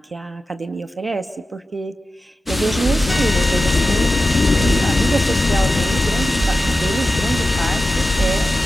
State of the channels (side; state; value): both; normal; correlation 0.93